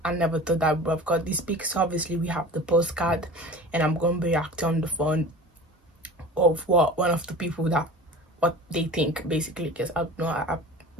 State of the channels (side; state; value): both; normal; correlation 0.37